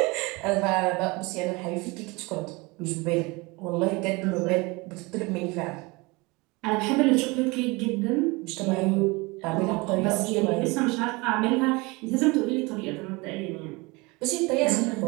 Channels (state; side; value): quieter; left; 25.3 dB